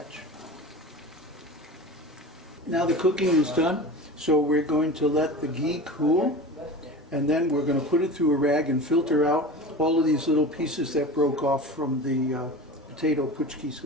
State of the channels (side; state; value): both; normal; correlation 0.33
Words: Now the cooking is done, so we're going to let the ghee cool, and then we're going to put it through a rag and filter out all of these little pieces that broke off from the potato puchkis,